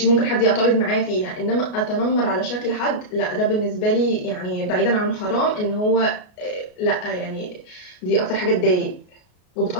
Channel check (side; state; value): right; late; 33 ms